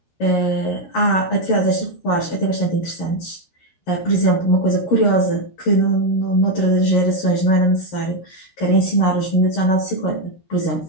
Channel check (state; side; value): late; right; 13 ms